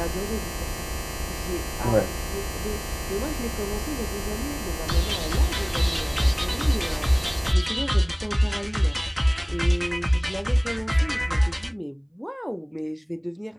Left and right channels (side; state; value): both; identical; correlation 1.00